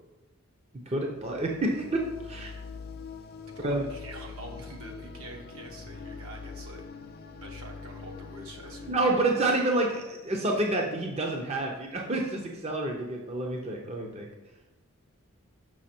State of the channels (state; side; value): normal; both; correlation 0.27